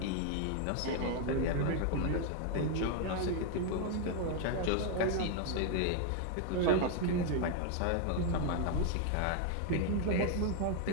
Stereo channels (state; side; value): different; both; correlation 0.00